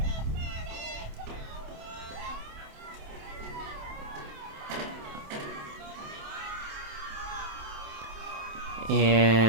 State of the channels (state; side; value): late; left; 27 ms